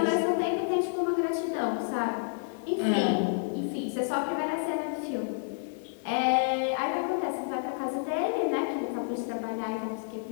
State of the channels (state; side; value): silent; right; 58 dB below the other